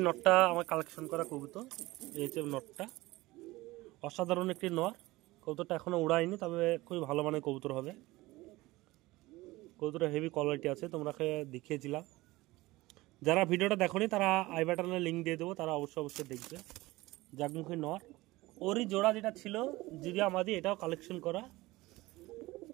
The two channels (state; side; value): quieter; left; 19.7 dB